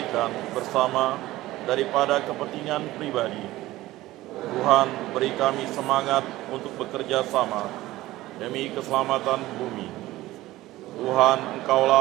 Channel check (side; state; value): left; quieter; 17.0 dB